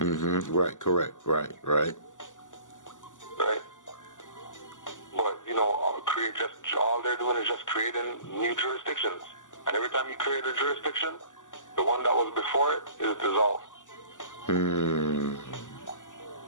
Right, correct. Right. Right? But, all they're doing is just creating new jurisdictions. And every time you create a jurisdiction, the one that was before it is dissolved.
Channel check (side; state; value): right; late; 0.87 ms